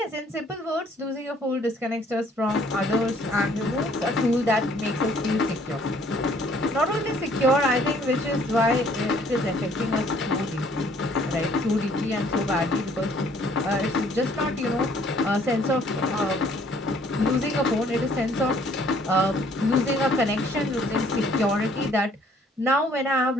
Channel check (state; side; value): normal; both; correlation 0.60